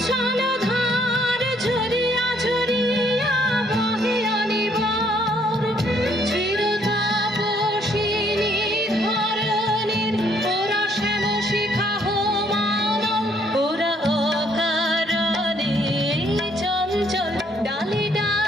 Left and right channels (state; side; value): normal; both; correlation 0.67